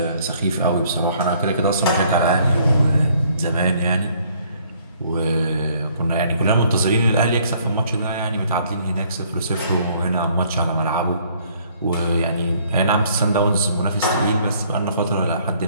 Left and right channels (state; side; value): inverted; both; correlation -0.62